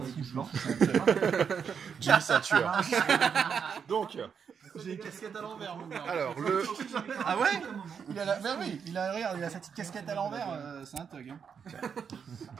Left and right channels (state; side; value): quieter; left; 6.8 dB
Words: lance. Jimmy, c'est un tueur. Donc, J'ai une casquette à l'envers, mon gars. alors, le... Ah ouais? Il a la. Ben oui, regarde, il a sa petite casquette à l'envers, c'est un thug. Hein.